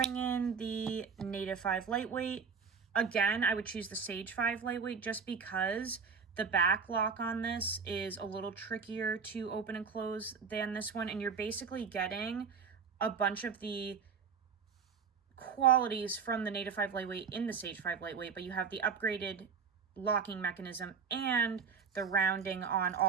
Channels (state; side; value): quieter; left; 5.9 dB